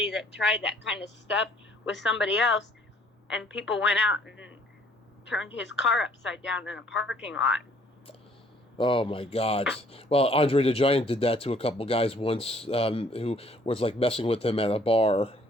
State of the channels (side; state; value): both; normal; correlation 0.60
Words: that tried that kind of stuff with somebody else, and people went out and turned his car upside down in a parking lot. Oh my God. Well, Andre the Giant did that to a couple guys once, who was like messing with him at a bar.